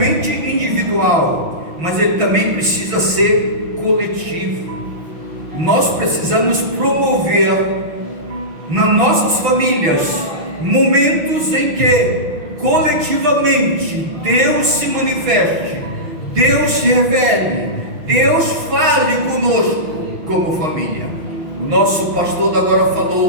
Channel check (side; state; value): left; late; 6.1 ms